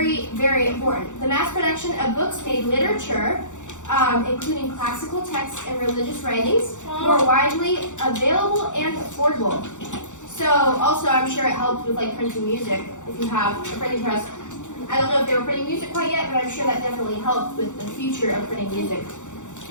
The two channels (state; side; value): late; right; 0.85 ms